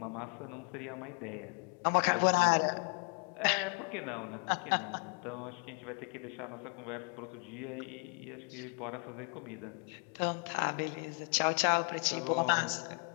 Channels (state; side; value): quieter; right; 38.1 dB